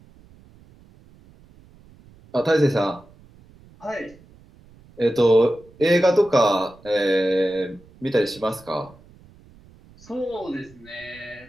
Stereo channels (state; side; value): noise; right; rumble, 26 dB below the sound